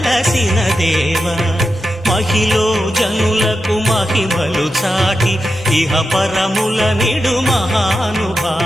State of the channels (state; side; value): normal; both; correlation 0.89